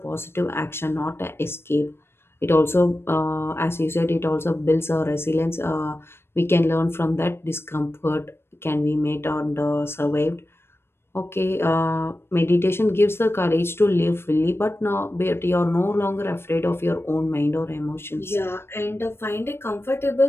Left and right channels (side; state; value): right; late; 0.12 ms